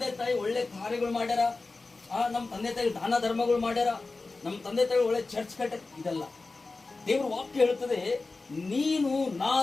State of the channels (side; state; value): right; quieter; 3.7 dB